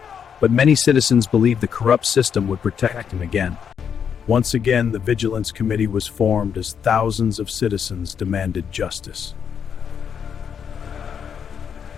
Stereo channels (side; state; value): right; quieter; 7.5 dB